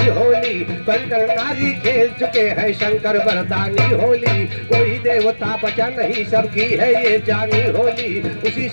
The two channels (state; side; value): inverted; both; correlation -1.00